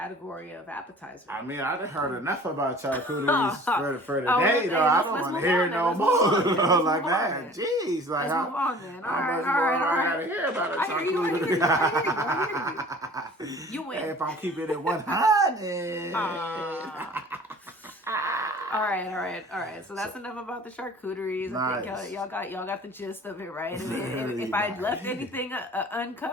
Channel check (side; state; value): both; normal; correlation 0.46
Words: of appetizer. I mean, I've heard enough about charcuteries for today, though. I don't want to hear no more like that. Jeez, like let's move on then. All right. I gotta hear about a charcuterie. I hear you. You win. If I'm keeping it 100. All right. So that's enough about the charcuteries. Nice. I think y'all got the gist of it, right? If I left anything